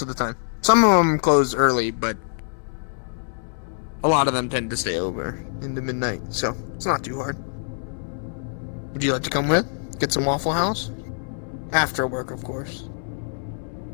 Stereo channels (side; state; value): right; silent; digital silence